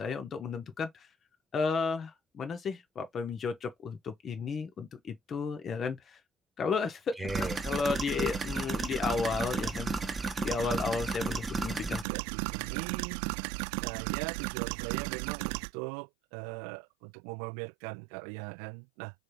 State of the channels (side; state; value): left; drops out; at 12.1 s